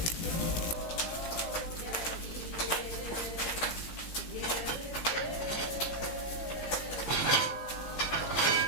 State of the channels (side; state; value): right; late; 18 ms